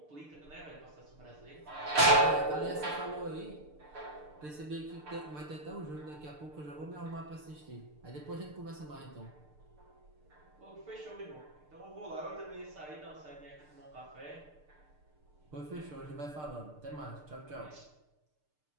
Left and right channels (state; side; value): late; left; 6.7 ms